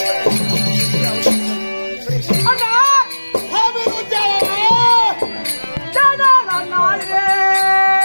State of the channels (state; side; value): inverted; both; correlation -1.00